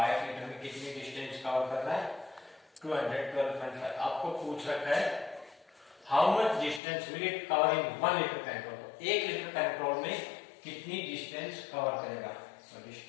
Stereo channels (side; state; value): right; drops out; at 6.8 s